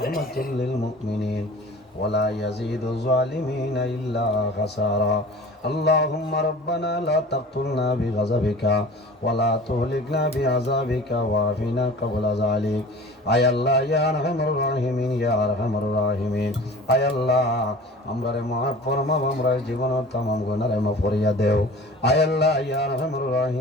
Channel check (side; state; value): both; normal; correlation 0.41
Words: للمؤمنين ولا يزيد الظالمين إلا خسارا اللهم ربنا لا تقتلنا بغضبك ولا تهلكنا بعذابك وعافنا قبل ذلك আয় আল্লাহ ইয়া আরহামুর রাহিমিন ইয়া আরহামুর রাহিমিন আয় আল্লাহ আমরারে মাফ ফরমাও আমরা জীবনের तमाम গুনাহরে মাফ করিয়া দেও আয় আল্লাহ ইয়া আরহামুর